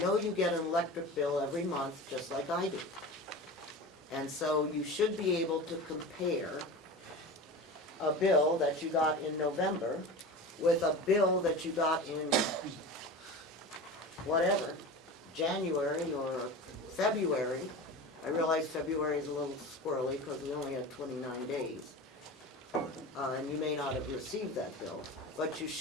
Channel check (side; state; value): both; normal; correlation 0.31